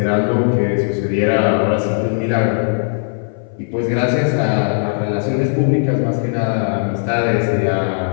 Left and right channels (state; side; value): silent; right; 59 dB below the other